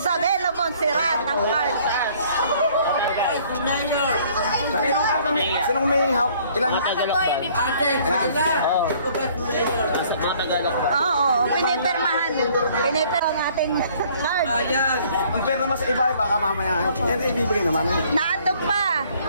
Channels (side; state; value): both; inverted; correlation -0.59